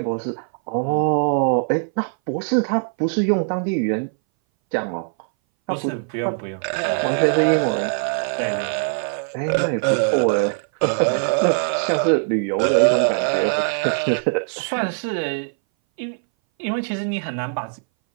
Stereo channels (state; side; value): silent; left; 61 dB below the other